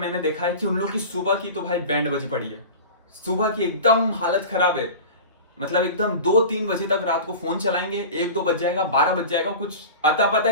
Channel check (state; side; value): inverted; both; correlation -0.34